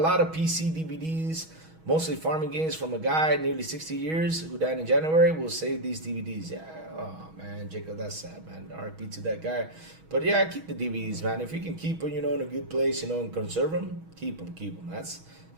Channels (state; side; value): late; left; 6.3 ms